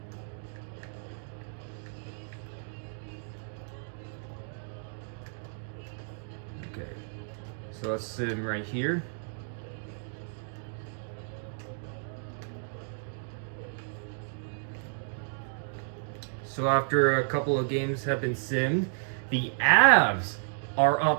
Okay, so let's sim right here. So after a couple of games have been simmed, the Avs are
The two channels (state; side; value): silent; left; digital silence